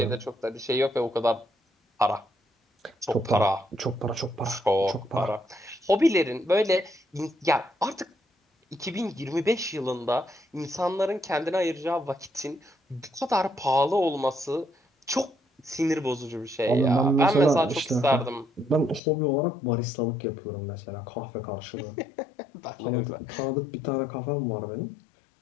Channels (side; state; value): right; drops out; at 19.0 s